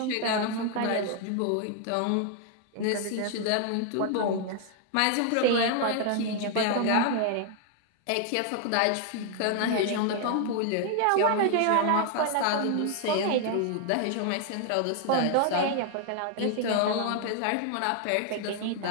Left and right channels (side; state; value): both; different; correlation 0.00